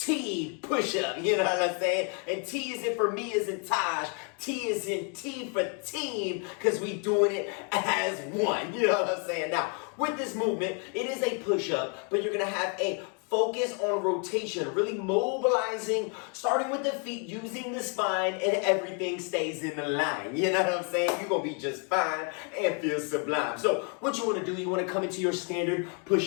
push-up. You know what I'm saying? And T is in for me as in Taj. T is in T for team because we doing it as one. You know what I'm saying? Now, with this movement, it is a push-up, but you're going to have a focus on rotation, really mobilizing, starting with the feet, using the spine, and everything stays in the line. You know what I'm saying? You're going to be just fine and feel sublime. So what you want to do, you want to come into your standard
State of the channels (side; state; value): right; quieter; 38.4 dB